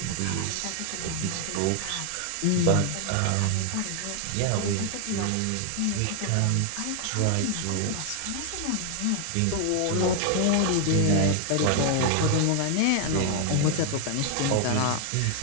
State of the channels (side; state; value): both; different; correlation 0.00